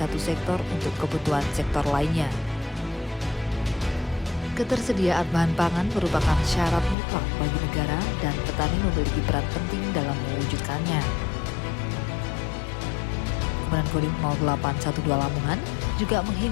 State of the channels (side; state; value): right; drops out; at 7.0 s